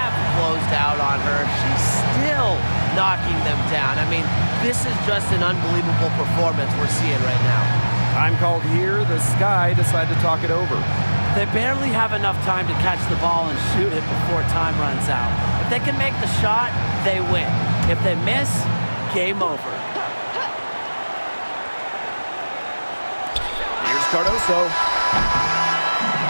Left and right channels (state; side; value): inverted; both; correlation -1.00